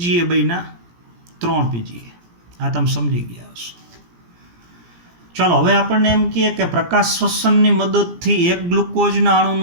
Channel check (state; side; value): late; left; 17 ms